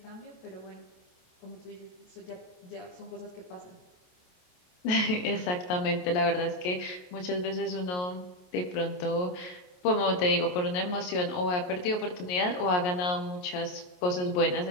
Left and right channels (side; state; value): right; late; 28 ms